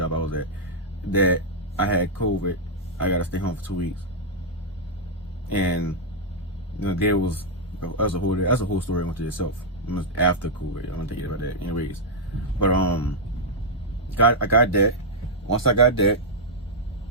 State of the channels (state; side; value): normal; both; correlation -0.06